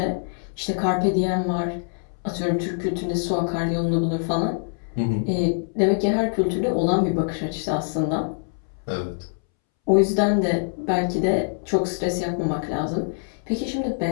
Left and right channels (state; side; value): silent; right; 62 dB below the other